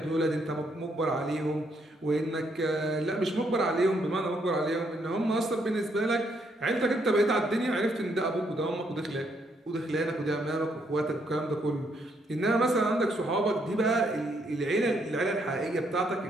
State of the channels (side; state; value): both; normal; correlation 0.73